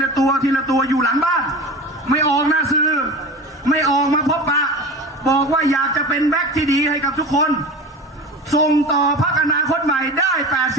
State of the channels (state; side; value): normal; both; correlation 0.32